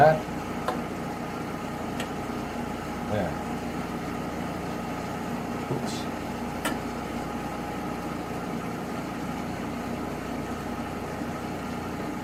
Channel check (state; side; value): identical; both; correlation 1.00